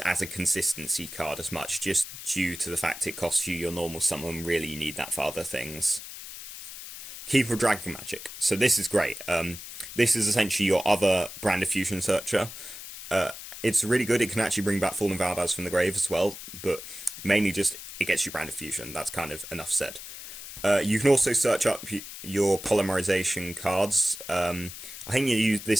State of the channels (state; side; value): noise; left; hiss, 12 dB below the sound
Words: as a consistency card as much, just due to the fact it costs you your normal summon. Really, you need that for other things. Keeper of Dragon Magic. So this is great. This is essentially your other brand of fusion searcher. It's really good. It can actually bring back Fallen Albaz from the grave as well, but mainly just it gets you brand of fusion. That's kind of enough said. You can also search up your polymerization cards. I think